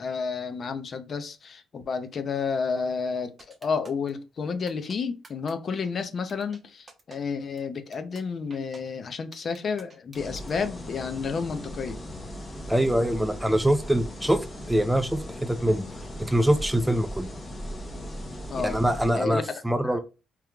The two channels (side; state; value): both; normal; correlation 0.89